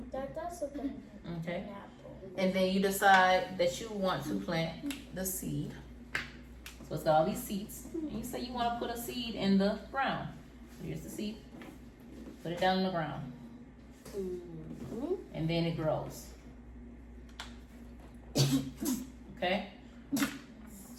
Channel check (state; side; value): identical; both; correlation 1.00